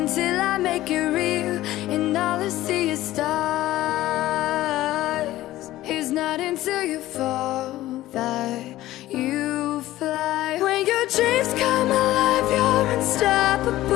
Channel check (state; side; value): quieter; right; 15.6 dB